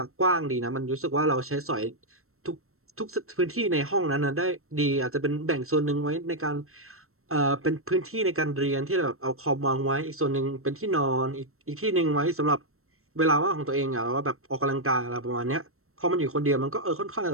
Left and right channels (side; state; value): left; late; 0.63 ms